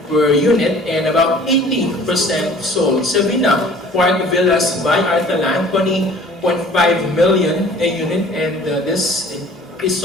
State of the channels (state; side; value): normal; both; correlation 0.49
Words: per unit and about 80% sold. Savina Park Villas by Artaland, 20.5 million a unit, and this is